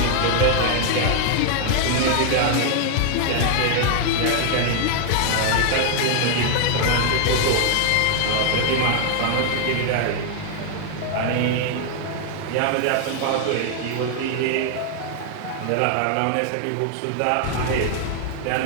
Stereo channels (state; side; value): different; both; correlation 0.00